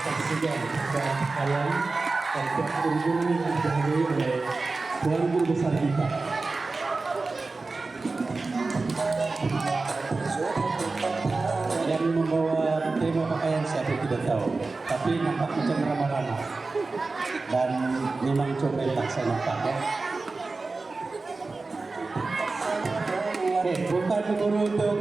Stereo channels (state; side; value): quieter; left; 3.7 dB